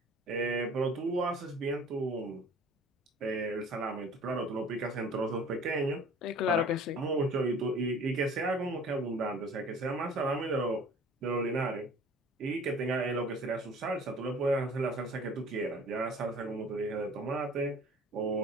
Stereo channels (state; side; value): normal; both; correlation 0.47